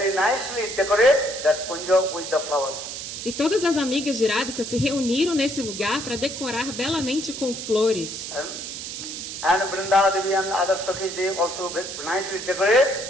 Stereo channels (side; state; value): right; noise; hiss, 8 dB below the sound